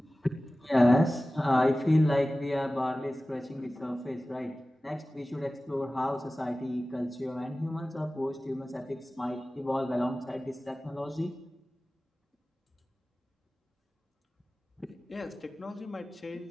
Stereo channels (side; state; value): both; normal; correlation 0.96